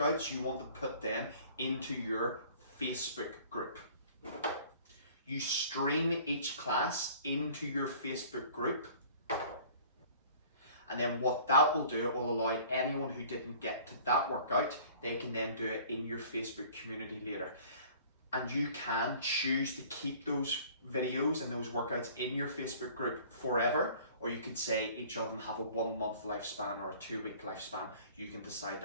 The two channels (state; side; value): inverted; both; correlation -0.49